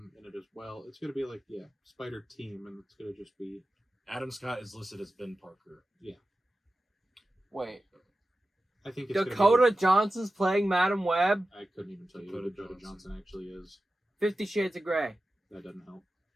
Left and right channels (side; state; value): both; normal; correlation 0.94